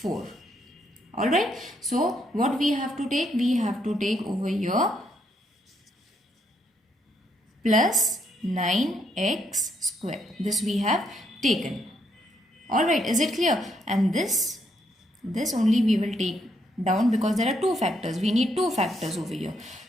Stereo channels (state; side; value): normal; both; correlation 0.75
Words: Alright. So what we have to take? We have to take over here plus 9x square. This we have taken. Alright, is it clear? And this only we will take down because there are two factors. We need two factors over here.